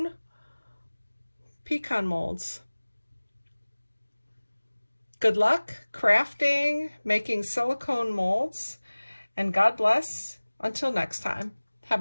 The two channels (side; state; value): both; inverted; correlation -1.00